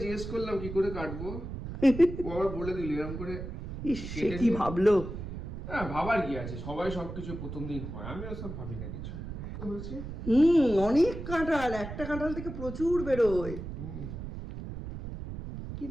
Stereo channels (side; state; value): right; noise; rumble, 8 dB below the sound